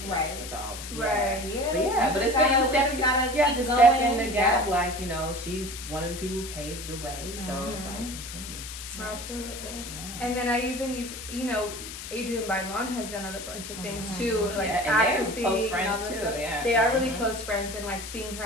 Right. So Yeah. But it's good. You have to step in the gap. Like she's one of the people who paved the way. So it's like continue. Absolutely. Yeah. And then I even Adrian Bailon has done a bunch of things too, like and acting, they're close friends too. stuff. Yeah. They are really close friends, and like seeing her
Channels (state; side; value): noise; left; hiss, 10 dB below the sound